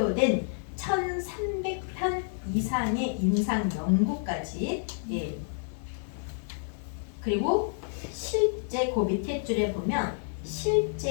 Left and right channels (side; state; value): right; silent; 58 dB below the other